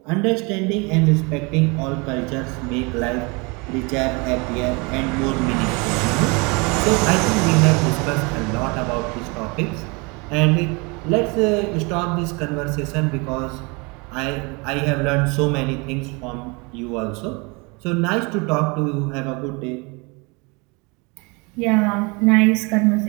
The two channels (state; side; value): quieter; left; 28.8 dB